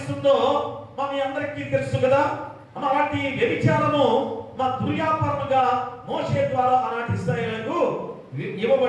మీ అందరికీ తెలుసు కదా. అలాంటి వ్యభిచారము మా దుర్వ్యాపారముగా మోషే ద్వారా ఆనాటి ఇశ్రాయేలుకు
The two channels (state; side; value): identical; both; correlation 1.00